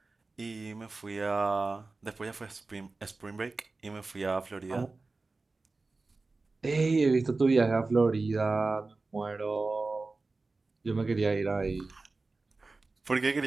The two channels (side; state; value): left; quieter; 3.6 dB